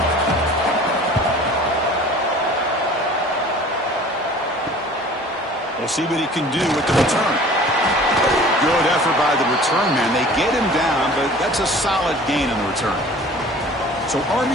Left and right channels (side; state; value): both; normal; correlation 0.46